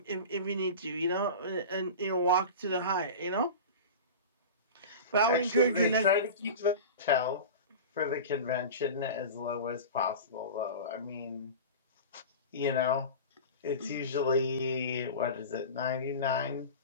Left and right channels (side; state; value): both; inverted; correlation -0.31